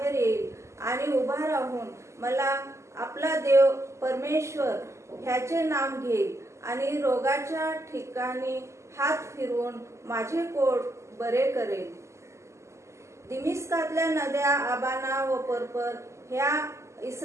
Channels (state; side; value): late; left; 0.13 ms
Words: येईल आणि उभा राहून मला आपला देव परमेश्वर ह्याचे नाम घेईल आणि रोगाच्या ठिकाणी हात फिरवून माझे कोट बरे करेल. दिमिस्कातल्या नद्या आबाना व पर्पर ह्या